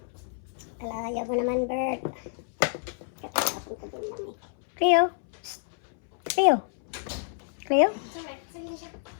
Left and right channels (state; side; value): silent; right; 59 dB below the other